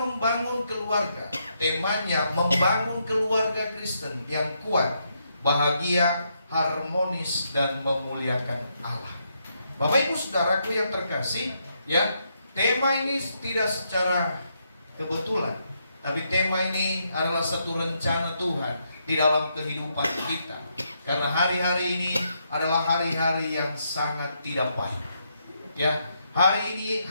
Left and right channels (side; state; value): both; inverted; correlation -0.79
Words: keluarga. Temanya membangun keluarga Kristen yang kuat, bahagia, harmonis, dan memuliakan Allah. Bapak Ibu saudaraku yang terkasih, ya, tema ini tidak secara kebetulan, tapi tema ini adalah satu rencana Tuhan di dalam kehidupan kita. Karena hari-hari ini adalah hari-hari yang sangat tidak baik. Ya,